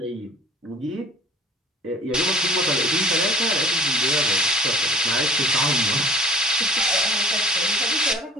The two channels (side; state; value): both; normal; correlation 0.48